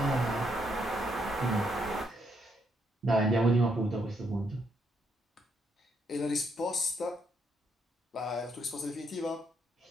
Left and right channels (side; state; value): both; normal; correlation 0.75